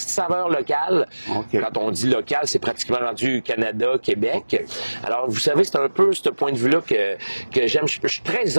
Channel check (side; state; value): both; inverted; correlation -1.00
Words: saveur locale. Okay. Quand on dit local, c'est pratiquement rendu Canada, Québec. Okay. Alors, vous savez, c'est un peu ce point de vue-là que j'aime. Je suis très